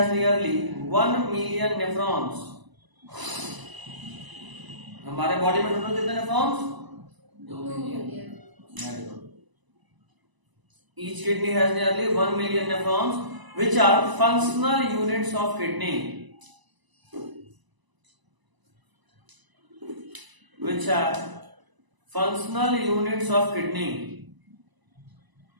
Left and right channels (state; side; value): late; left; 1.0 ms